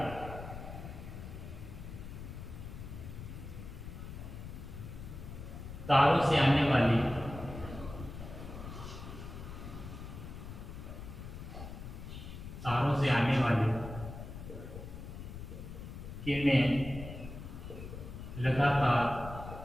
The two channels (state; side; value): noise; left; rumble, 10 dB below the sound